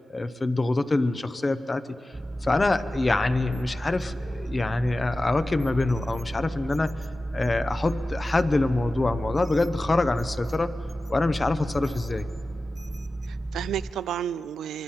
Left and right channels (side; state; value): both; normal; correlation 0.95